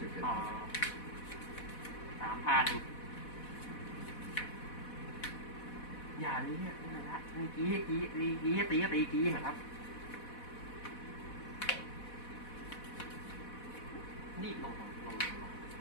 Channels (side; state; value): right; late; 4.1 ms